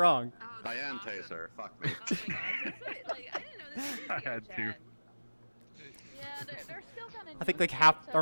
Diane Taser. Fuck me. Oh my gosh, that's what, like, I didn't know this was I had VRChat. to. Yeah, they're still kind of. I think like half or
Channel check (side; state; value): both; inverted; correlation -1.00